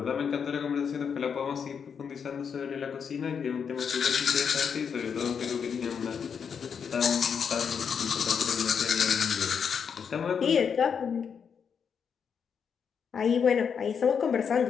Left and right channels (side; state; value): right; quieter; 6.8 dB